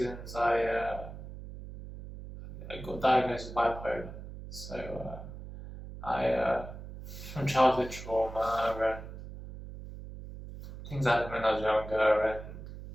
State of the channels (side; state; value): right; noise; hum, 12 dB below the sound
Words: I got diagnosed with bipolar. So from childhood trauma and things happened when I was younger, and